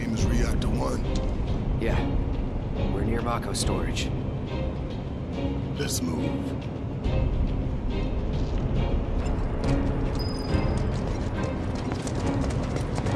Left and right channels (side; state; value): both; identical; correlation 1.00